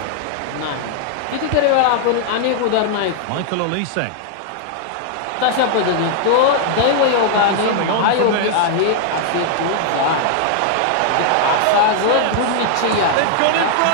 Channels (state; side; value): different; both; correlation 0.00